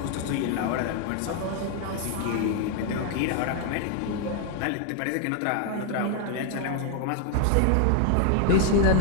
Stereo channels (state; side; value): different; both; correlation 0.00